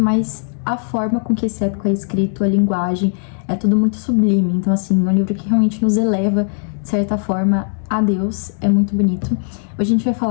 mas a forma com que esse épico é escrito, a linguagem, é tudo muito sublime. Então, assim, é um livro que realmente nos eleva, de certa forma, a Deus. É muito bonito. Hoje a gente vai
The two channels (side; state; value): right; silent; 67 dB below the other